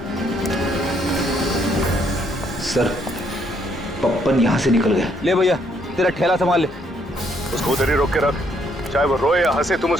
सर, पप्पन यहाँ से निकल गया। ले भैया, तेरा ठेला संभाल ले। उसको उधर ही रोक के रख, चाहे वो रोए या हंसे, तुम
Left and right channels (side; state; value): both; normal; correlation 0.70